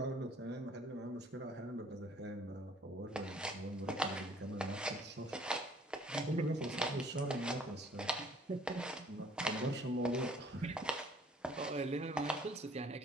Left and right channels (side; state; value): both; normal; correlation 0.57